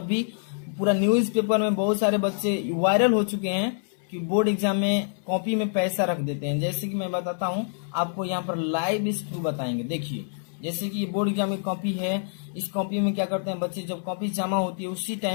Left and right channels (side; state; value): right; silent; 60 dB below the other